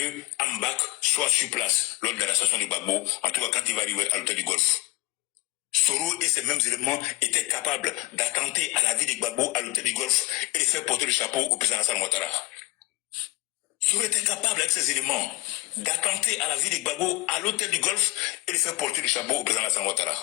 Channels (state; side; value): quieter; right; 21.4 dB